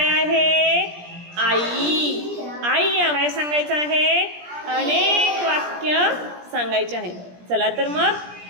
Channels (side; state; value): left; late; 17 ms